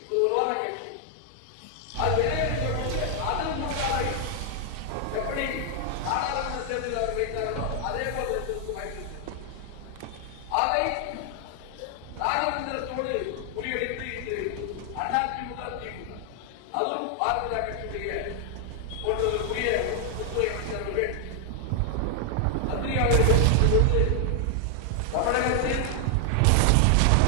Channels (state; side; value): different; both; correlation 0.00